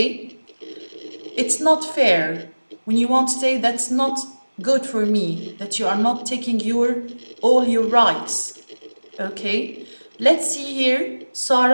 It's not fair when you want to say that's not good for me, that you are not taking all your rights. Okay? Let's see here,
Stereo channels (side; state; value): both; inverted; correlation -1.00